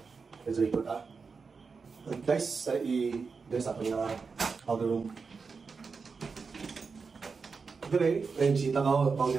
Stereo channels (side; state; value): left; quieter; 5.0 dB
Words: Let's record guys, i-dress up yung powder room. Dire, may bisita ka,